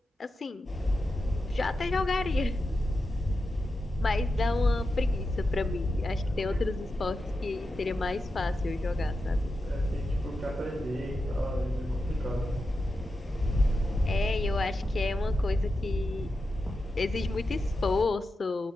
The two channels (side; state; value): both; normal; correlation 0.90